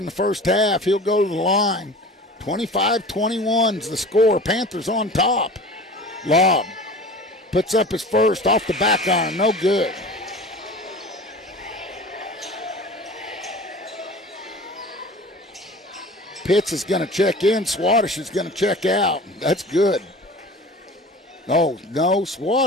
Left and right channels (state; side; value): normal; both; correlation 0.39